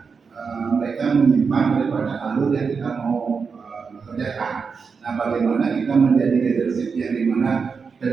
mereka menyimpang daripada alur yang kita mau kerjakan. Nah, bagaimana kita menjadi leadership yang dimana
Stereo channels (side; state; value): left; quieter; 5.4 dB